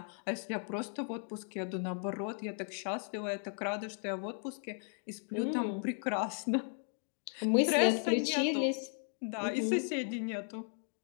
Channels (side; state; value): right; silent; 54 dB below the other